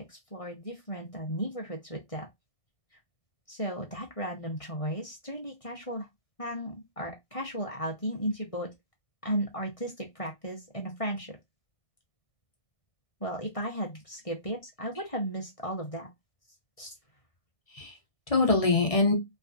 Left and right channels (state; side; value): late; right; 1.6 ms